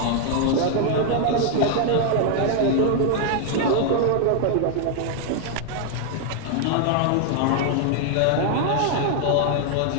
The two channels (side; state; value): both; different; correlation 0.00